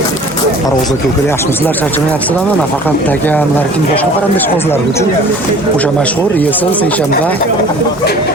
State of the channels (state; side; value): normal; both; correlation 0.47